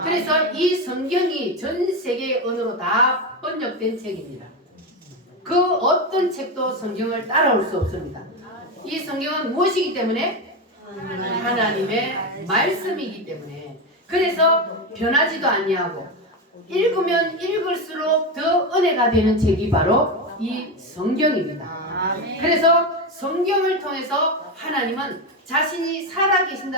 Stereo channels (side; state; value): both; normal; correlation 0.14